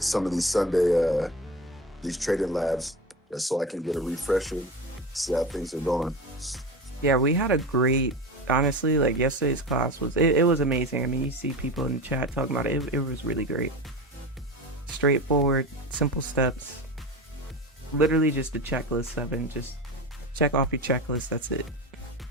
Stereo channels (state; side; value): normal; both; correlation 0.27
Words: Sunday these trading labs just so I can get a refresher, see how things are going. Yeah, we had a great, honestly, like yesterday's class it was amazing. I mean, you see people in the chat talking about it. It was really great. Straightforward, simple steps. Literally just a checklist, 7. Just check off your checklist. That's it.